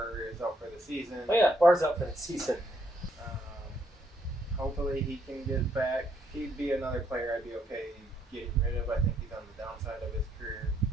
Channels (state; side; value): normal; both; correlation 0.72